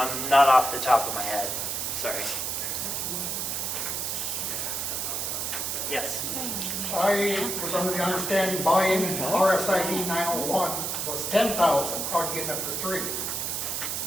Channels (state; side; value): noise; right; hiss, 2 dB below the sound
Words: off the top of my head. Sorry. Yes. I was under the understanding buying RSID 901 was 10,000. How are you getting it for 3?